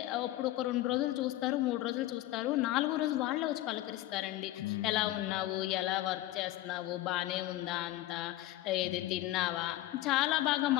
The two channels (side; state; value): right; quieter; 15.7 dB